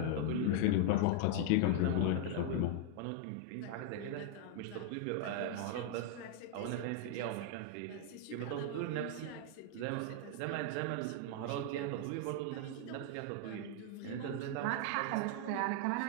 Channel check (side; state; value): both; different; correlation 0.00